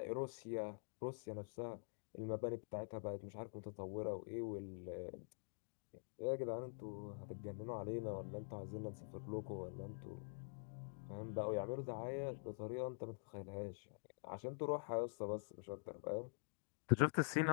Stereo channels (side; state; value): right; silent; digital silence